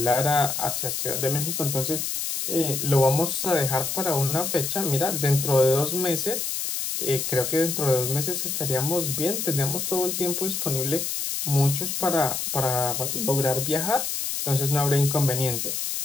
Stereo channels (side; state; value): left; noise; hiss, 2 dB below the sound